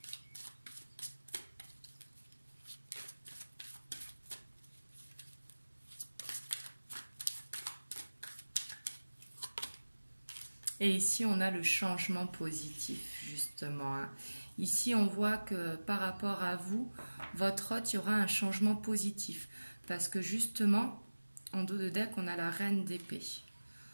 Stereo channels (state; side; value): inverted; both; correlation -1.00